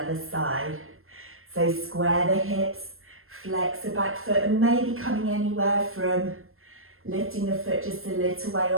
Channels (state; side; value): late; left; 0.61 ms